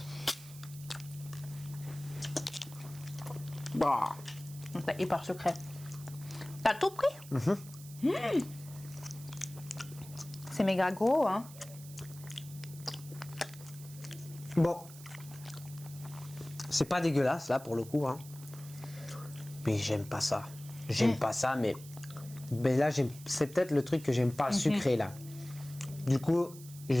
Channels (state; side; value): noise; right; hiss, 17 dB below the sound